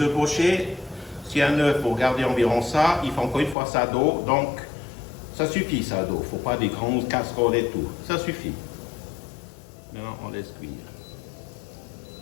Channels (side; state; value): right; drops out; at 3.6 s